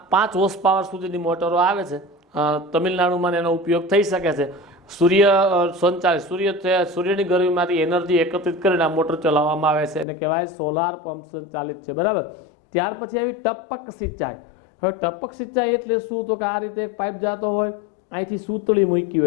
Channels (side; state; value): right; drops out; at 10.1 s